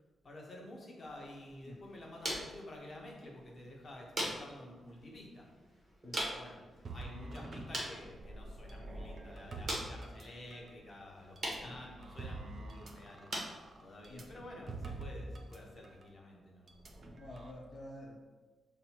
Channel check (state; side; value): normal; both; correlation 0.82